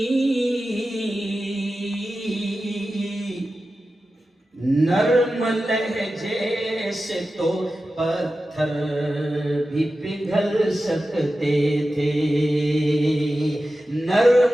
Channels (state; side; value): normal; both; correlation 0.93